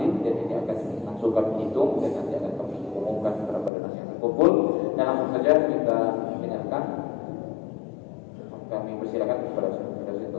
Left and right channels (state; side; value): drops out; right; at 3.7 s